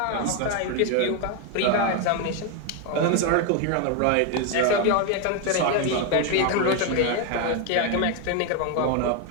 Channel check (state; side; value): different; both; correlation 0.01